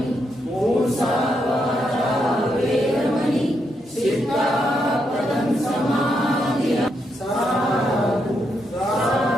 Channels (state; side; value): normal; both; correlation 0.80